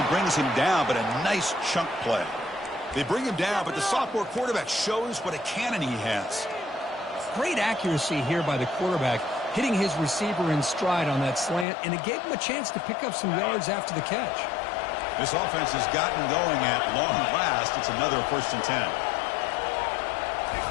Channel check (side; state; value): right; drops out; at 11.7 s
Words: brings him down, but a nice chunk play. They bring him down, but the sophomore quarterback shows what a cannon he has. Great accuracy here by the quarterback, hitting his receiver in stride on that slant, and it gave him a chance to pick up some yards after the catch. This offense has gotten going at long last. It's another first and 10.